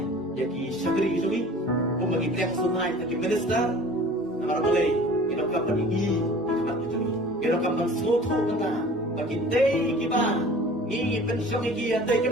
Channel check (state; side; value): normal; both; correlation 0.45